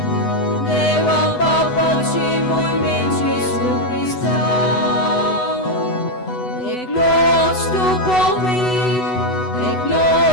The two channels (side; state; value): right; late; 8.0 ms